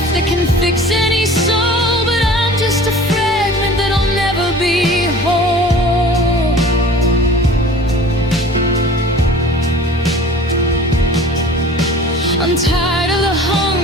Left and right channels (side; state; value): both; normal; correlation 0.44